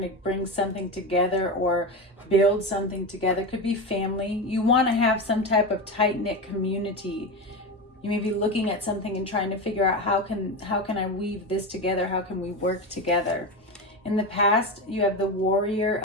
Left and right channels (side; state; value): both; normal; correlation 0.19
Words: to bring something together or build something together. Could be family. You want to have some type of tight-knit community. You may be looking at something and trying to figure out how can I weave this together? How can we work together? In the past, you have the Warrior